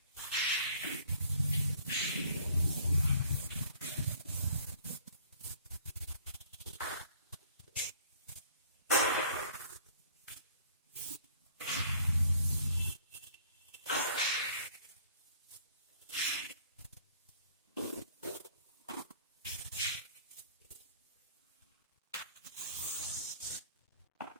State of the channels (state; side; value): inverted; both; correlation -0.57